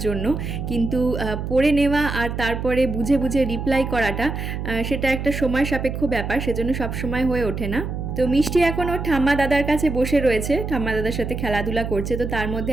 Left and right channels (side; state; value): right; noise; hum, 5 dB below the sound